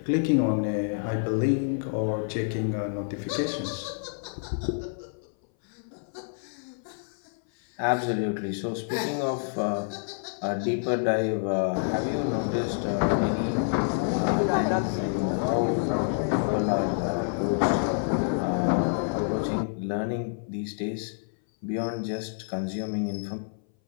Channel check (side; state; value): right; silent; 59 dB below the other